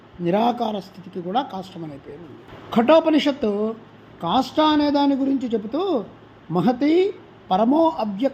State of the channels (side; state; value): both; identical; correlation 1.00